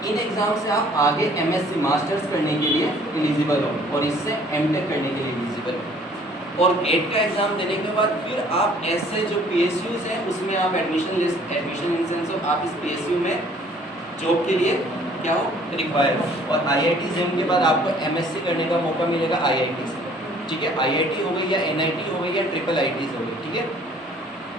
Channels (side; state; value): both; normal; correlation 0.56